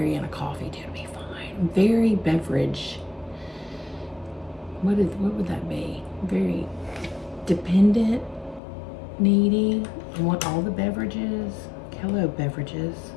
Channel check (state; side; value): drops out; right; at 8.6 s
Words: in a coffee tea, it'll be fine. Very beverage. What would that be? Very dependent, needy. I want all the beverages. Hello, beverages.